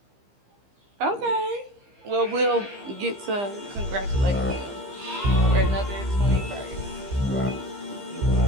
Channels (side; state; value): left; late; 15 ms